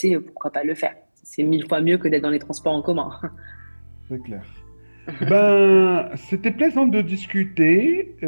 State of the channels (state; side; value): inverted; both; correlation -1.00